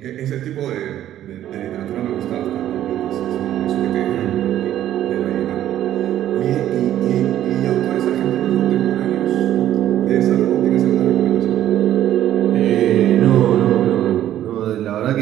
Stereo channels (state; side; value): quieter; left; 12.1 dB